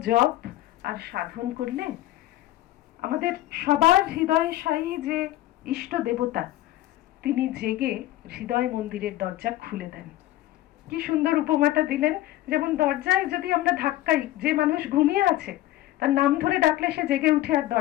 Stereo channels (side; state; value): right; quieter; 15.4 dB